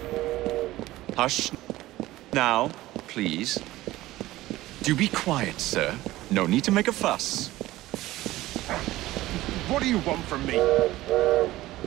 Hush. Now, please. Do be quiet, sir. No need to make a fuss. What do you want from me?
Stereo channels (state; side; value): quieter; left; 16.8 dB